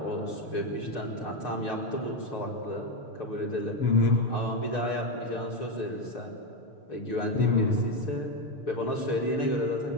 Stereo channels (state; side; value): late; right; 6.6 ms